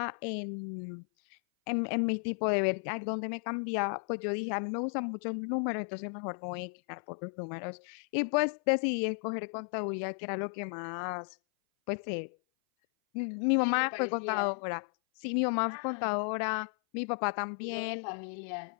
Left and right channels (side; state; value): right; silent; 55 dB below the other